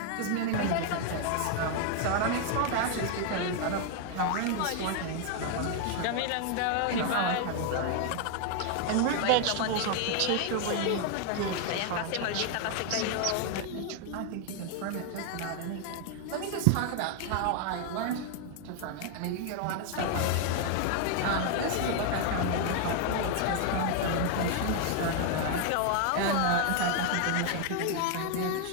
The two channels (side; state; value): both; different; correlation 0.00